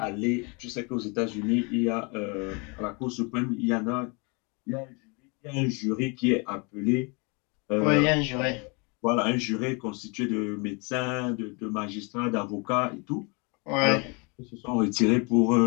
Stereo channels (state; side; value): quieter; right; 31.6 dB